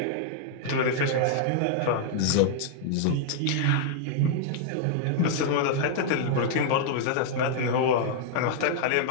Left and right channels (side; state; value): both; different; correlation -0.01